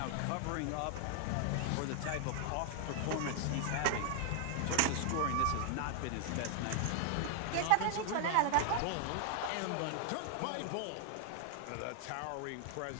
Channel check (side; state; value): both; different; correlation 0.00